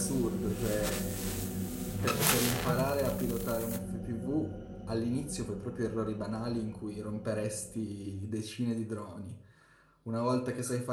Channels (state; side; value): identical; both; correlation 1.00